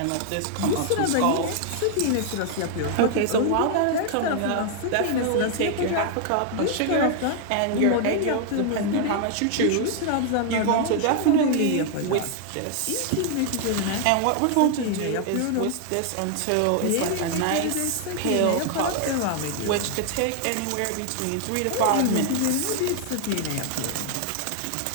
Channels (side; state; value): both; different; correlation 0.00